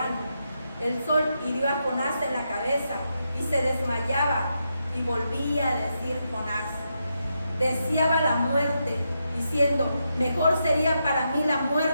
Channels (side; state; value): both; inverted; correlation -0.83